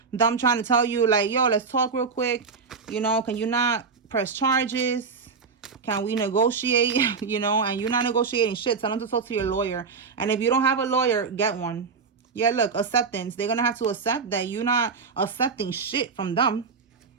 Them trying to tell you, like, yo, let's talk real quick. You know, can you not press charges? Can we negotiate? You know, and you're not negotiating shit. Tell them to talk to your lawyer. And if you don't have a lawyer, get one. Yeah, look, acceptance. They're going to have to accept that you're not accepting shit from them.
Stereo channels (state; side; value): quieter; left; 5.2 dB